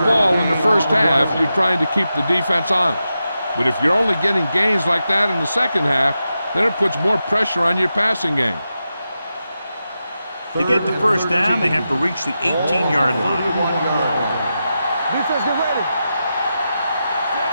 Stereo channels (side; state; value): both; inverted; correlation -0.89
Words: in the first half, you're trying to keep the defense honest. But if you're only getting gains like that in the second half, then it puts more pressure on your passing game. To get the first down, they have to reach the 18-yard line. Defense, get ready.